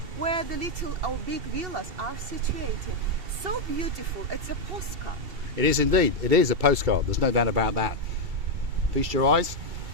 where the little or big villas are situated. So beautiful, it's a postcard. It is indeed. It is a postcard. There's no doubt about that. Feast your eyes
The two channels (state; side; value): late; left; 2.7 ms